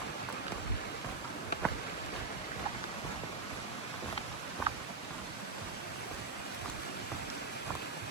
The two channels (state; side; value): quieter; left; 4.0 dB